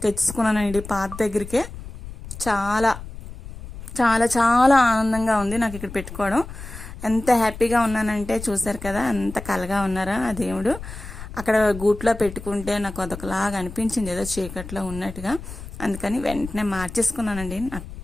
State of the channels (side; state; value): left; noise; rumble, 12 dB below the sound